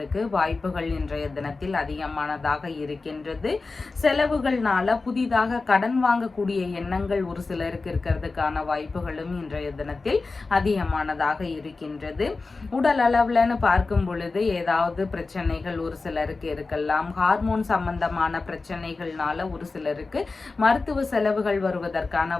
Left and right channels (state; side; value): quieter; right; 3.9 dB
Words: வாய்ப்புகள் இன்றைய தினத்தில் அதிகமானதாக இருக்கின்றது. செலவுகள்னால புதிதாக கடன் வாங்கக்கூடிய எண்ணங்கள் ஒரு சிலருக்கு இருக்கிறதுக்கான வாய்ப்புகளும் இன்றைய தினத்தில் அதிகமானதாக இருக்கின்றது. உடல் அளவுலன்னு பார்க்கும் பொழுது ஏதாவது பிரச்சனைகள் ஒரு சிலருக்கு இருக்கலாம். ஹார்மோன் சம்பந்தமான பிரச்சனைகள்னால ஒரு சிலருக்கு மருத்துவ செலவுகள் வருவதற்கான